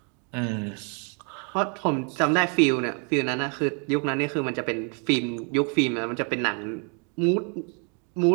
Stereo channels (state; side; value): quieter; left; 37.5 dB